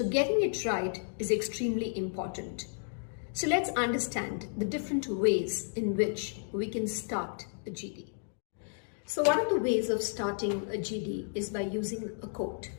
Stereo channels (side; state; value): right; silent; digital silence